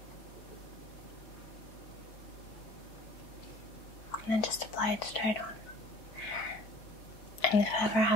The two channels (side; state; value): right; late; 4.6 ms